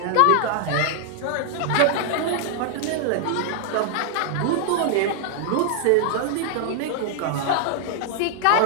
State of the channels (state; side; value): different; both; correlation -0.01